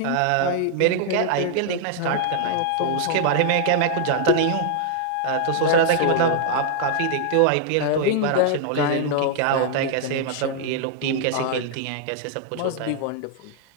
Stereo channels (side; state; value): both; different; correlation 0.00